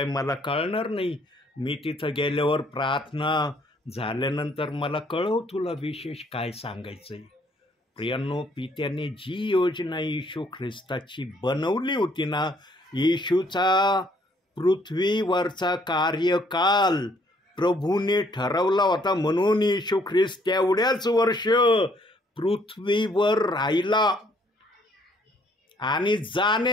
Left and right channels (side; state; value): both; normal; correlation 0.65